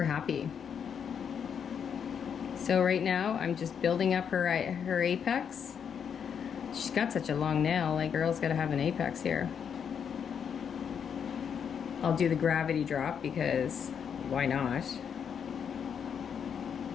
happy. So right now, I'm just building up her apex. She's got such a long nail. Like, girl's gotta have an apex here. I'll do the gravity drop because why not?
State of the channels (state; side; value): quieter; right; 7.5 dB